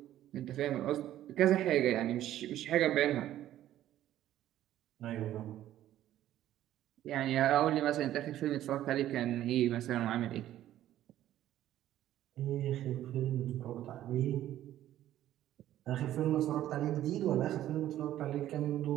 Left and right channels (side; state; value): left; quieter; 12.9 dB